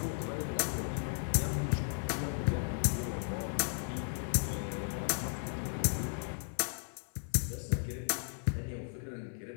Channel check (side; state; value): right; silent; 54 dB below the other